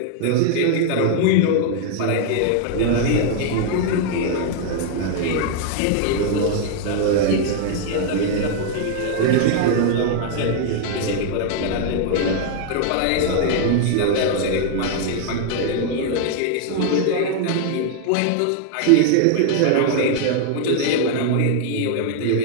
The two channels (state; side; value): different; both; correlation 0.00